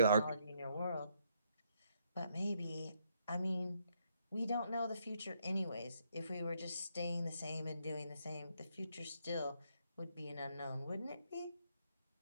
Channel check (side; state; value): both; inverted; correlation -0.73